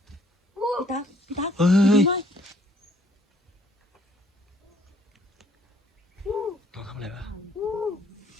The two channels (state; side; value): normal; both; correlation 0.64